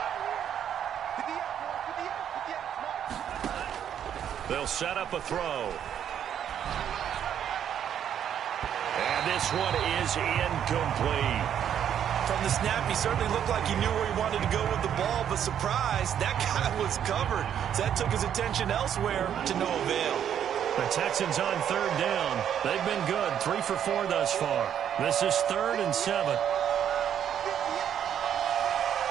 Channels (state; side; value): quieter; left; 9.4 dB